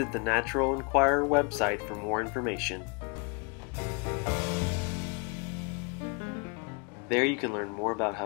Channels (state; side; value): quieter; right; 34.0 dB